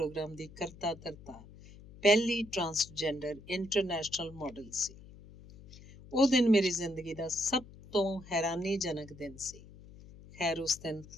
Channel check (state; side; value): noise; left; hum, 19 dB below the sound